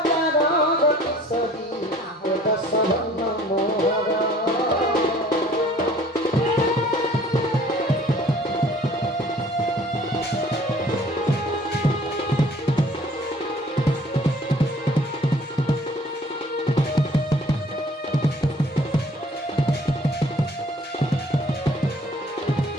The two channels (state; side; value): normal; both; correlation 0.54